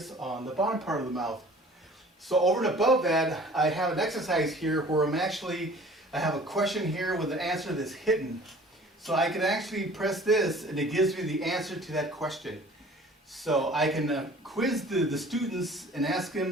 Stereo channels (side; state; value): both; normal; correlation 0.49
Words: on the bottom part of the mouth. So over and above that, I have an exercise here where I have a question here with an answer that's hidden. So I can actually press this and it gives me the answer to that question. So I can quiz the students and ask